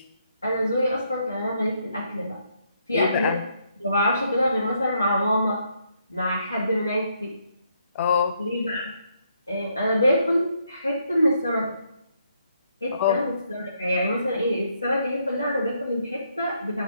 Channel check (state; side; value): inverted; both; correlation -0.74